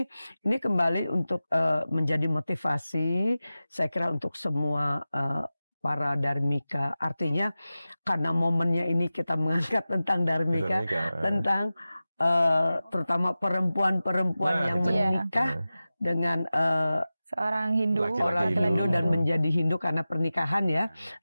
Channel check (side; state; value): both; inverted; correlation -0.96